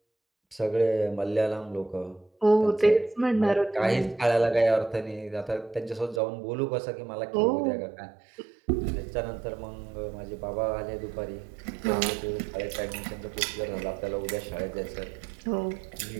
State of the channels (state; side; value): drops out; left; at 6.2 s